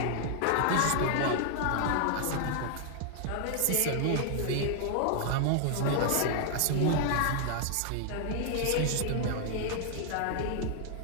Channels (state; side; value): different; both; correlation 0.00